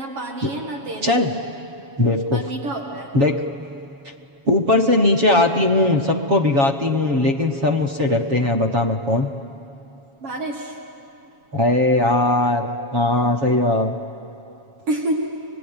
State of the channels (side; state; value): left; late; 7.2 ms